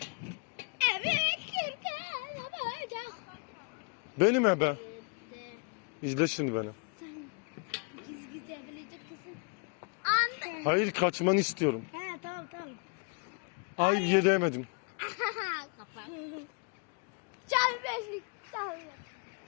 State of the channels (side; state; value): right; quieter; 36.0 dB